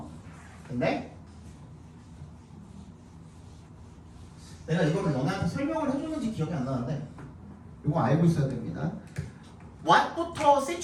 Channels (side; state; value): both; identical; correlation 1.00